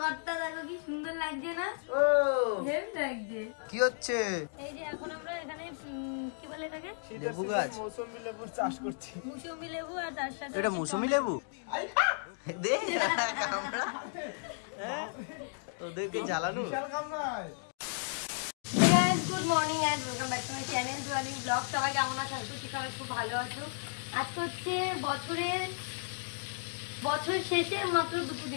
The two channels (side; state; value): right; silent; digital silence